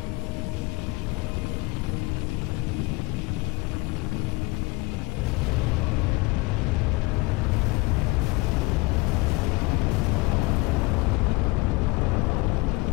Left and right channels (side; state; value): right; quieter; 23.3 dB